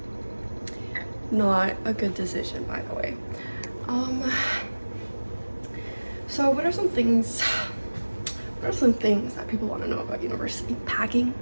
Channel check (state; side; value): inverted; both; correlation -1.00